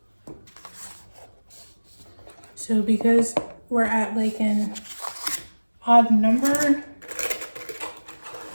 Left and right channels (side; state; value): both; inverted; correlation -1.00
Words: So because we're at like an odd number,